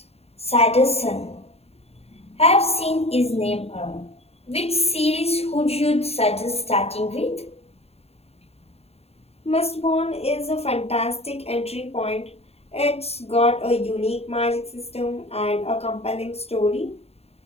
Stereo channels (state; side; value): late; right; 0.30 ms